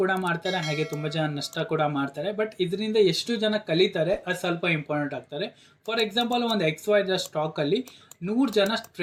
ಮಾಡ್ತಾರೆ, ಹಾಗೆ ತುಂಬಾ ಜನ ನಷ್ಟ ಕೂಡ ಮಾಡ್ತಾರೆ. ಬಟ್ ಇದರಿಂದ ಎಷ್ಟು ಜನ ಕಲಿತಾರೆ ಅದು ಸ್ವಲ್ಪ ಇಂಪಾರ್ಟೆಂಟ್ ಆಗ್ತಾರೆ. ಫಾರ್ ಎಕ್ಸಾಂಪಲ್, ಒಂದು XYZ ಸ್ಟಾಕ್ ಅಲ್ಲಿ 100 ಜನ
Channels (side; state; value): both; identical; correlation 1.00